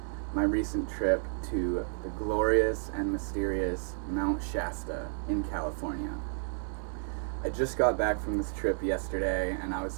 my recent trip to the glorious and mysterious Mount Shasta in California. I just got back from this trip yesterday, and I was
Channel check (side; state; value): left; silent; digital silence